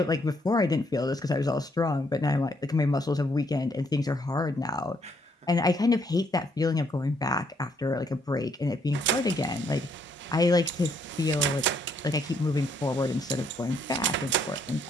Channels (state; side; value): normal; both; correlation 0.70